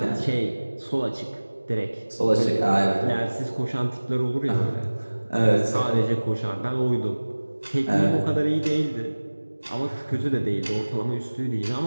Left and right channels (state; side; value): inverted; both; correlation -1.00